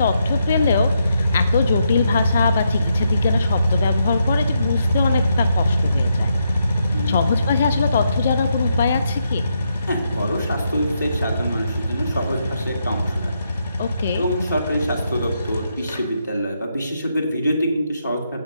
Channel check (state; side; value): inverted; both; correlation -0.80